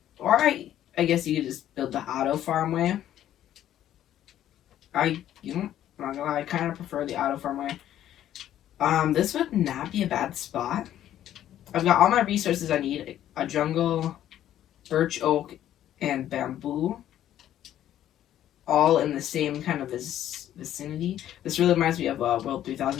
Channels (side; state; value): right; quieter; 11.7 dB